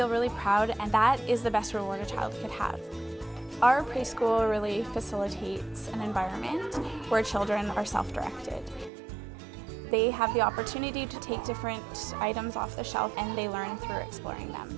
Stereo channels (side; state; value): left; drops out; at 8.9 s